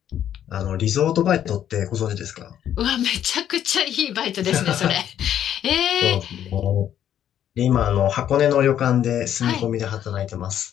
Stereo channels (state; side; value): quieter; right; 10.4 dB